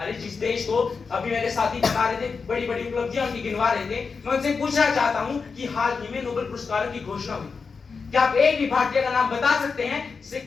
जिस देश को अभी मेरे साथी बता रहे थे बड़ी बड़ी उपलब्धियां उनकी गिनवा रहे थे, मैं उनसे पूछना चाहता हूं कि हाल ही में नोबेल पुरस्कारों की घोषणा हुई, क्या आप एक भी भारतीय का नाम बता सकते हैं जिसे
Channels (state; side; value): quieter; right; 5.1 dB